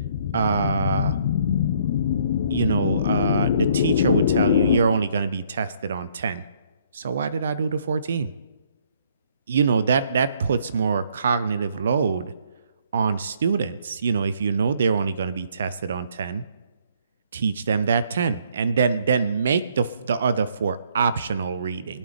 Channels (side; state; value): both; inverted; correlation -0.65